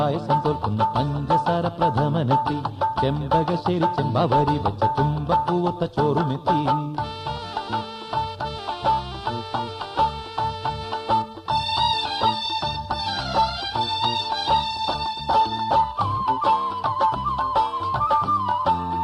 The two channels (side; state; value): both; identical; correlation 1.00